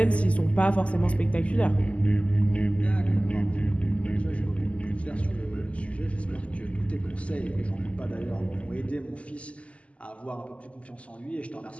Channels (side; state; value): right; late; 0.062 ms